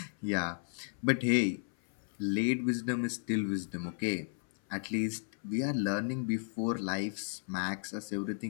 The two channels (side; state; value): right; silent; 55 dB below the other